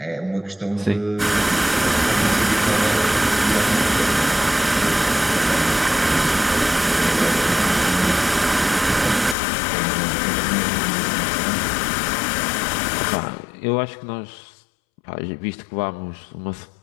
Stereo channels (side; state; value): right; drops out; at 9.3 s